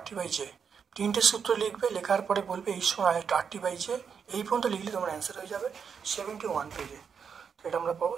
3টে সূত্র লিখবে, লেখার পরে বলবে H সমান RT/J। এই পর্যন্ত লিখলে তোমার অ্যান্সার হয়ে যাবে 71 পেজে। এটা আমরা পাবো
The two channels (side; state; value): left; quieter; 6.6 dB